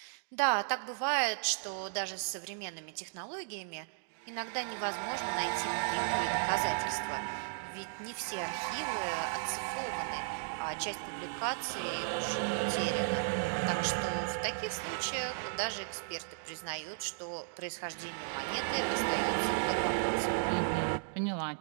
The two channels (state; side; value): silent; left; digital silence